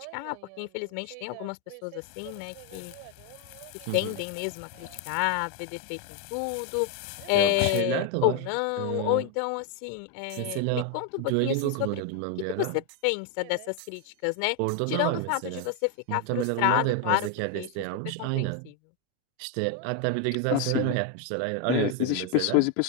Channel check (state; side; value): different; both; correlation 0.01